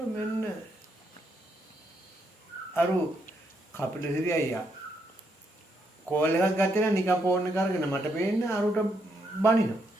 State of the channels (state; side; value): normal; both; correlation 0.77